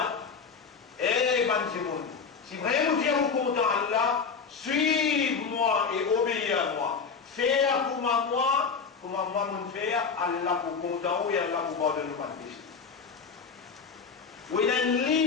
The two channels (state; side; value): quieter; right; 5.6 dB